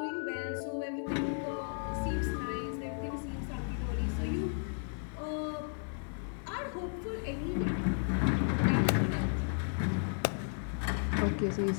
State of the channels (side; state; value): right; silent; digital silence